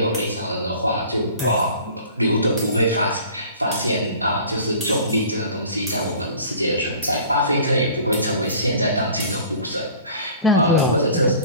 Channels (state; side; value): inverted; both; correlation -0.46